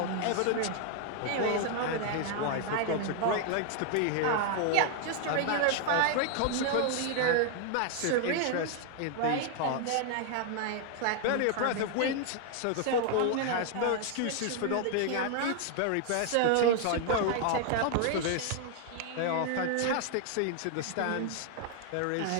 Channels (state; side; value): different; both; correlation 0.00